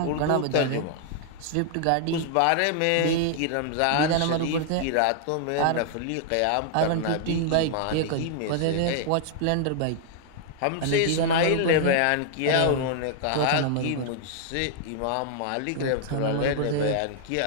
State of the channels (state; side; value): different; both; correlation 0.00